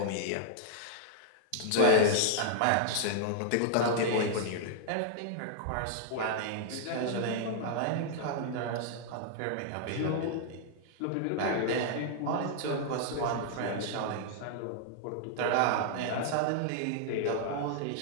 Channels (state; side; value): different; both; correlation -0.01